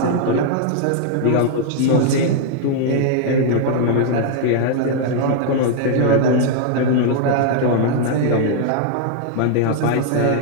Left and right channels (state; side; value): different; both; correlation -0.01